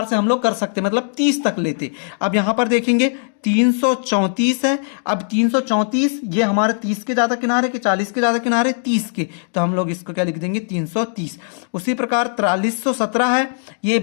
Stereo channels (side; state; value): right; silent; digital silence